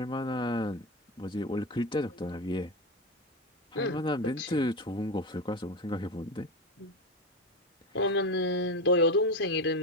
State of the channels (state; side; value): normal; both; correlation 0.17